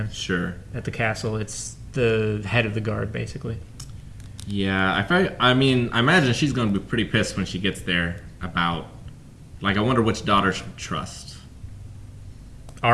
Sure. at the castle. It's the head of the guard, basically. Yeah, I imagine she's going to be pretty pissed when she gets there about, like, I wonder which daughter she'll trust.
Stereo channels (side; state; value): both; identical; correlation 1.00